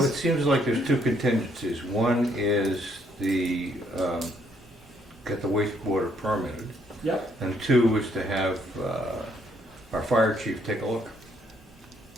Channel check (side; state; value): both; normal; correlation 0.69